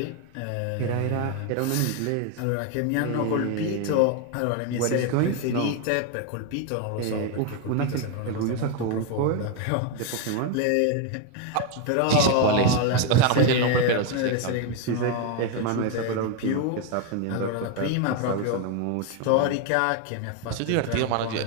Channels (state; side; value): different; both; correlation 0.01